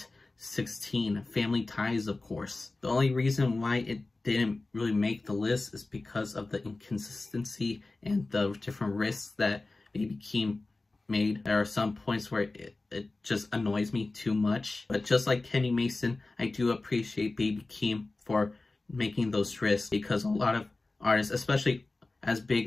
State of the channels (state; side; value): quieter; right; 3.2 dB